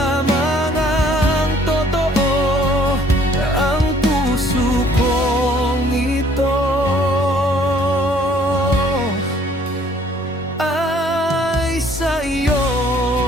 ang totoo. Ang puso kong ito ay sa iyo.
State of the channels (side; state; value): both; normal; correlation 0.60